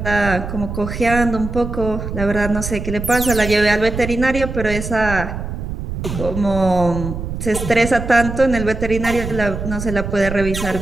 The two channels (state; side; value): noise; right; rumble, 6 dB below the sound